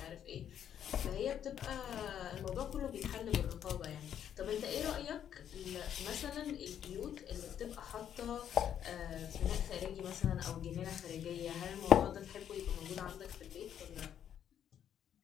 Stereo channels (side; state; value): right; quieter; 9.5 dB